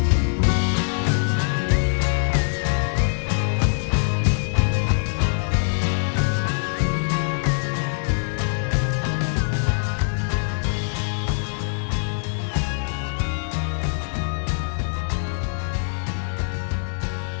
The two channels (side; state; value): right; silent; 63 dB below the other